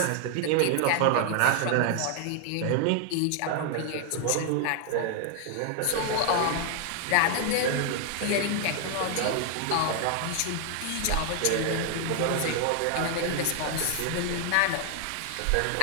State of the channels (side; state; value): both; different; correlation 0.00